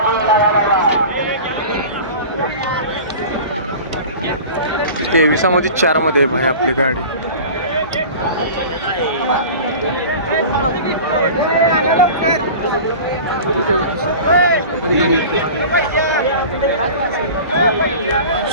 तेविसामध्ये 4 मध्ये भाई आपली गाडी.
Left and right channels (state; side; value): inverted; both; correlation -0.37